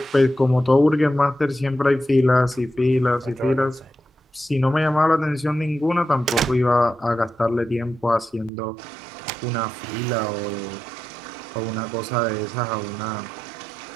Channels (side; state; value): left; drops out; at 8.5 s